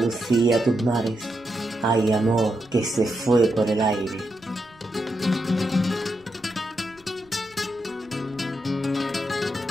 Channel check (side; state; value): right; noise; rumble, 30 dB below the sound